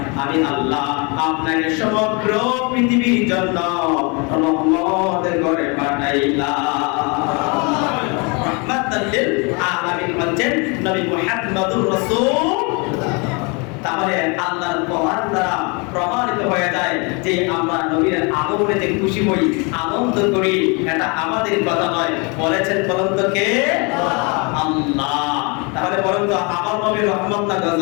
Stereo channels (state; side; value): quieter; right; 31.1 dB